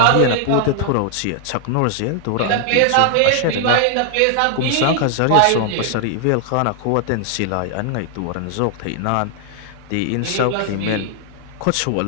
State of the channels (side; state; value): both; different; correlation 0.00